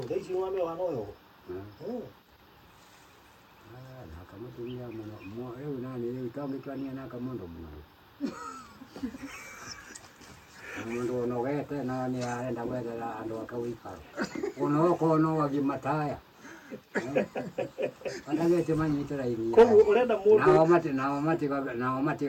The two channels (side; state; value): both; identical; correlation 1.00